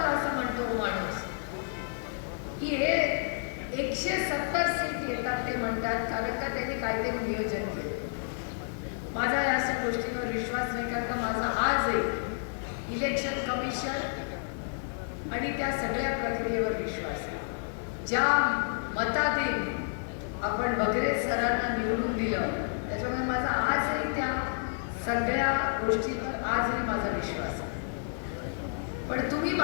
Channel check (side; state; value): right; silent; digital silence